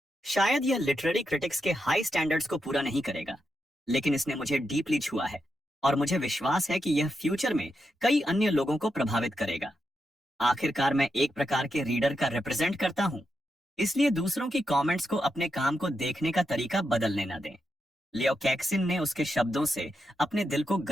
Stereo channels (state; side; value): normal; both; correlation 0.85